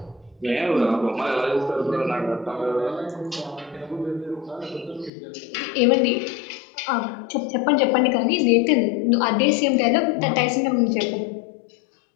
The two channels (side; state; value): right; drops out; at 5.1 s